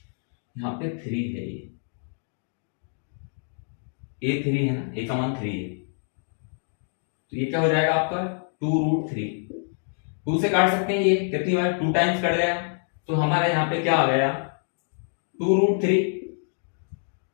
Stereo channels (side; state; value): right; silent; 59 dB below the other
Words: यहाँ पे 3 है, ये a3 है ना, a का मान 3 है तो ये क्या हो जाएगा आपका 2 रूट 3, 2 से काट सकते हैं, ये कितनी बार 2 टाइम्स कट गया तो हमारे यहाँ पे क्या आ गया 2 रूट 3।